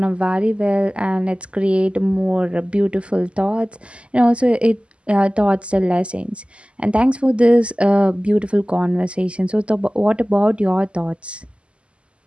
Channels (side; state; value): left; late; 0.055 ms